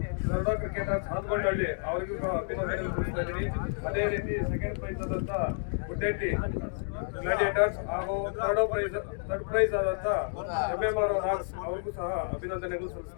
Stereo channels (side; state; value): right; silent; digital silence